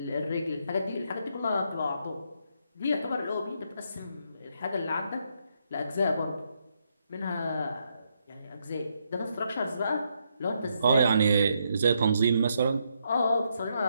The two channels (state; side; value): inverted; both; correlation -0.77